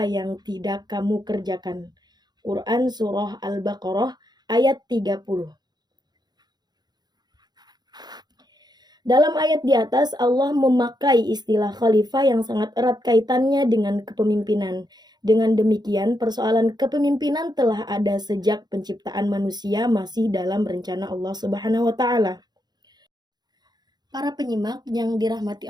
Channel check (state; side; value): late; left; 0.20 ms